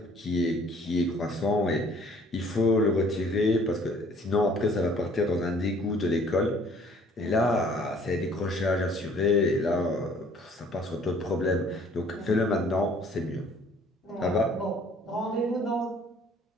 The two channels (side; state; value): both; normal; correlation 0.57